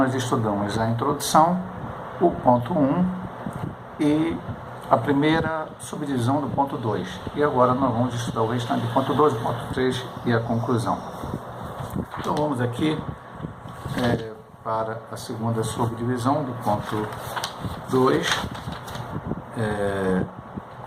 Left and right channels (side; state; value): both; identical; correlation 1.00